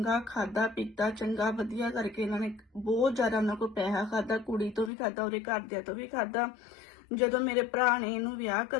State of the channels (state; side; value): drops out; right; at 4.9 s